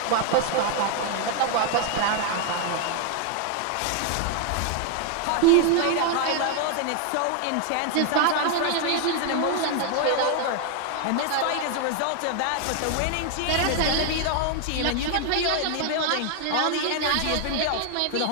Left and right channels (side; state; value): both; different; correlation 0.00